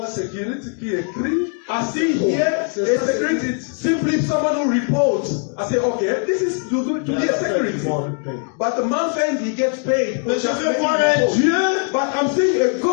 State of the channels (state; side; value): quieter; right; 39.6 dB